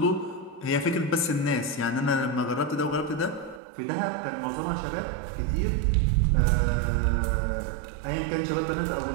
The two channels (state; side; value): drops out; left; at 3.6 s